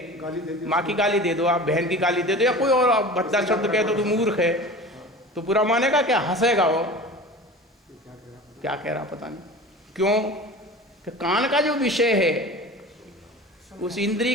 गाली दे दी, माँ की गाली दे दो, आप बहन की गाली दे दो, या कोई और भद्दा शब्द कह दो तो मूर्ख है, तो बुरा मानेगा क्या? हंसेगा वो। क्या कह रहा पता नहीं। क्यों? कि कान का जो विषय है उस इंद्रिय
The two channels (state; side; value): normal; both; correlation 0.37